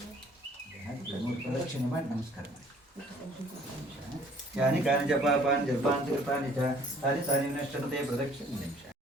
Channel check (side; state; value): both; normal; correlation 0.57